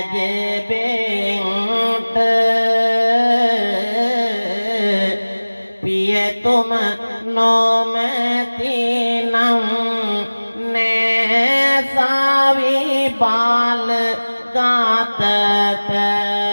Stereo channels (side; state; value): both; inverted; correlation -1.00